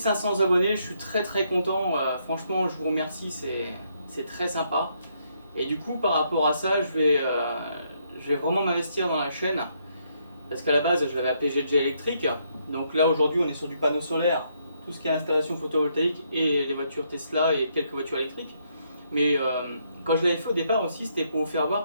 abonnés, je suis très content, franchement je vous remercie, c'est très sympa. Et du coup par rapport à ça, je vais vraiment m'investir dans la chaîne, parce qu'à la base je l'avais appelé GG électrique, donc là aujourd'hui on est sur du panneau solaire, tout ce qui est installation photovoltaïque et les voitures Tesla et quelques voitures électriques. Mais quand je l'avais fait au départ aussi, c'était pour vous faire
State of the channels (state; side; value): inverted; both; correlation -0.74